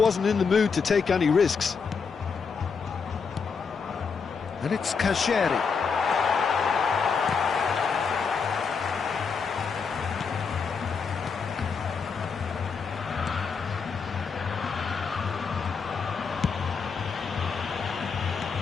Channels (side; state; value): right; quieter; 5.6 dB